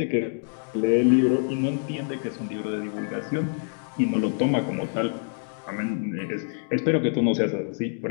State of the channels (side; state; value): right; silent; digital silence